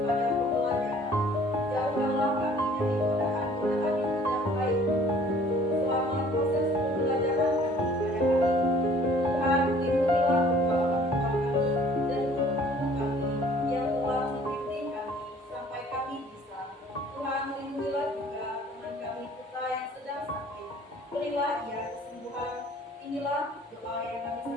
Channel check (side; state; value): both; normal; correlation 0.54